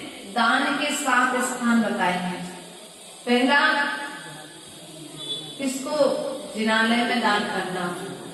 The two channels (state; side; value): identical; both; correlation 1.00